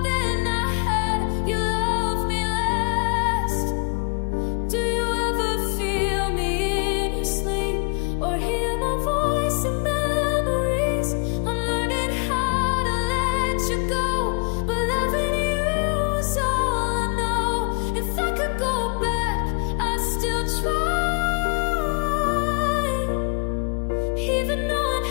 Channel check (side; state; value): right; quieter; 34.6 dB